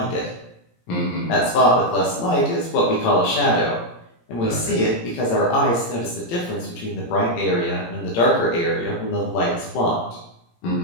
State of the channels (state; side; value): late; right; 17 ms